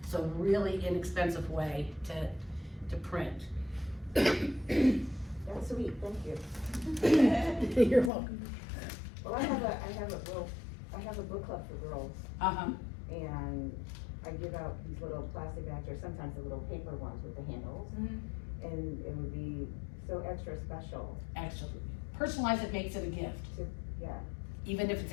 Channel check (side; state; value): right; drops out; at 8.1 s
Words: so really inexpensive way to print. That's sweet, thank you. You're welcome. Well, I have a book club for girls, and I give out these little plastic bags, or sometimes the little paper ones with the handles, and it would be so extra special. Actually, personalize it, makes it a gift, Yeah, even if it's